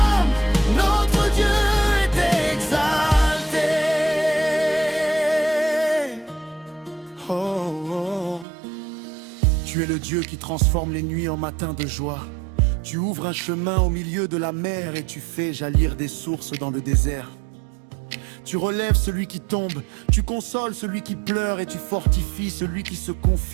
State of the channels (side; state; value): left; drops out; at 8.5 s